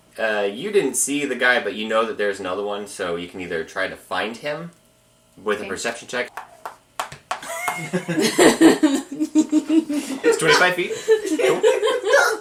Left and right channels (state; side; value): identical; both; correlation 1.00